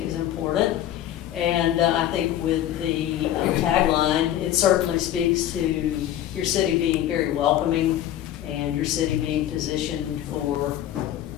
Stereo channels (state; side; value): quieter; right; 12.0 dB